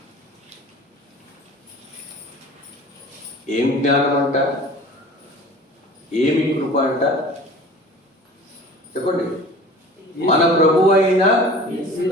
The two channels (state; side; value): normal; both; correlation 0.42